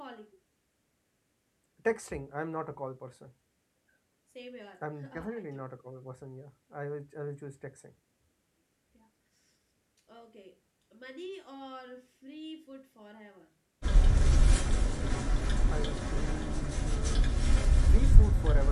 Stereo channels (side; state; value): both; identical; correlation 1.00